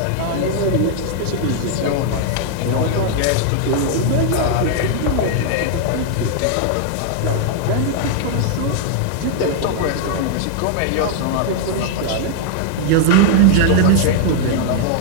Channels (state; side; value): different; both; correlation 0.00